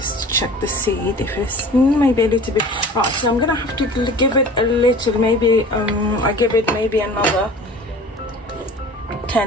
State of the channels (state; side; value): normal; both; correlation 0.42